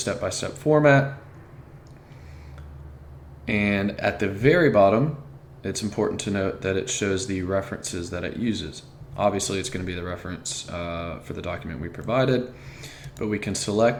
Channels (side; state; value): both; identical; correlation 1.00